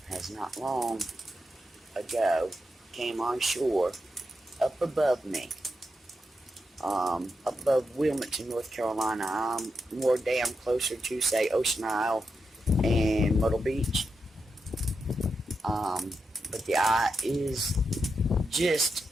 has not long ago came on shore up above me. Above Wilmington, North Carolina. I'm more damn closer to, say, Ocean Isle and Myrtle Beach. But the eye is just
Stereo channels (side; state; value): both; normal; correlation 0.86